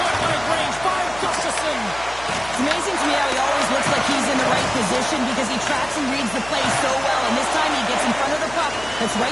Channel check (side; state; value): left; noise; hum, 18 dB below the sound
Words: range by Gustafsson. It's amazing to me how he always looks like he's in the right position because he tracks and reads the play so well. And this time he gets in front of the puck that's